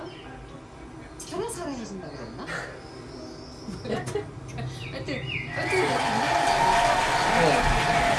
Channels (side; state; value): both; identical; correlation 1.00